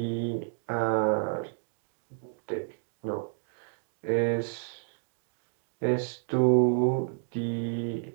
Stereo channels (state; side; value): silent; left; digital silence